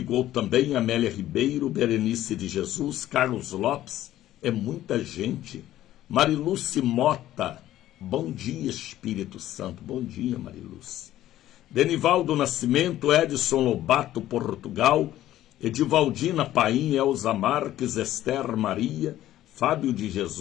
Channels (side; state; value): right; quieter; 13.6 dB